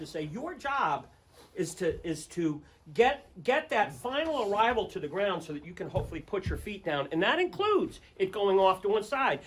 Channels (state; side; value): identical; both; correlation 1.00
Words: say your job is to get that final arrival to the ground so that you can hopefully put your feet down, and that includes it going off to one side.